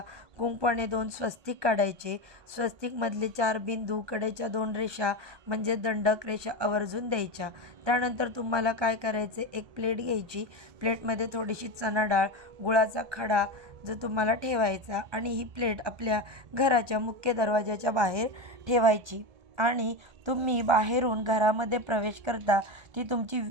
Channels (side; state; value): left; late; 1.3 ms